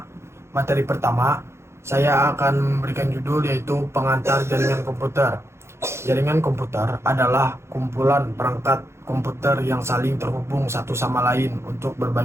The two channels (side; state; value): left; late; 0.13 ms